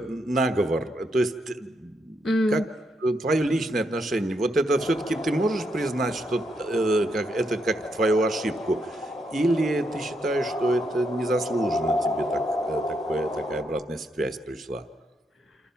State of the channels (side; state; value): both; normal; correlation 0.79